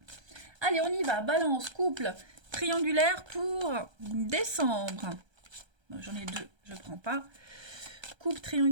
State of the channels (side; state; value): left; late; 1.3 ms